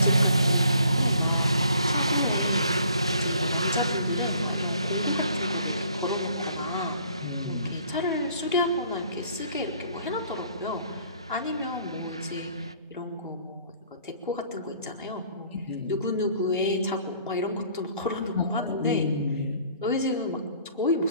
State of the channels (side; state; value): both; inverted; correlation -0.58